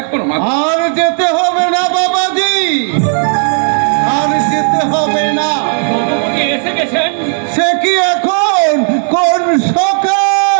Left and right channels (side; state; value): left; silent; 62 dB below the other